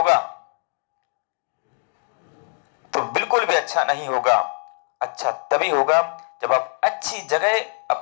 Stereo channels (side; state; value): right; silent; 59 dB below the other